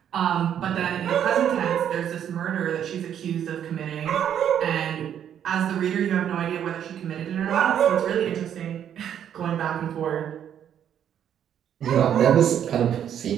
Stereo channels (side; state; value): left; quieter; 9.5 dB